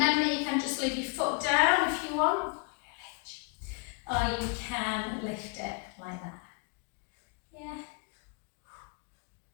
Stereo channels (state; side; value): quieter; right; 32.3 dB